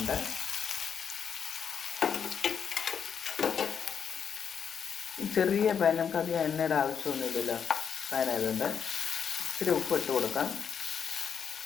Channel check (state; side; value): quieter; right; 7.3 dB